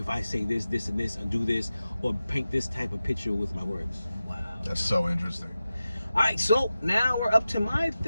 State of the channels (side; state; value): both; inverted; correlation -0.94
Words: I say this, this, and this, and do this, or paint this type of picture with my words. Wow. That's so interesting. All right, so now we're up to my